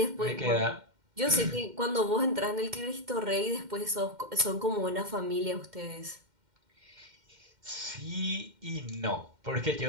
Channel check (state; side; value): late; left; 2.1 ms